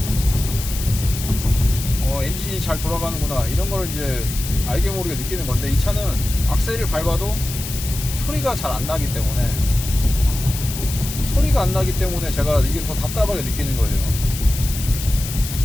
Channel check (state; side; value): noise; left; hiss, 8 dB below the sound